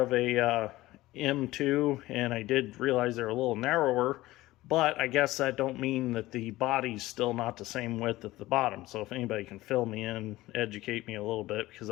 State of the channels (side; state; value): right; quieter; 17.5 dB